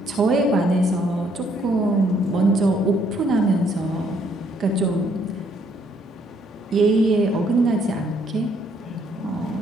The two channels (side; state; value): both; normal; correlation 0.68